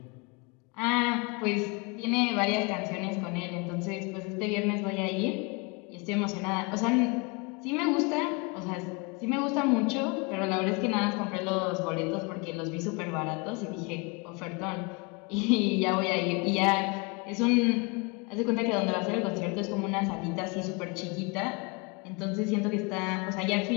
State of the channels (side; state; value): right; quieter; 29.3 dB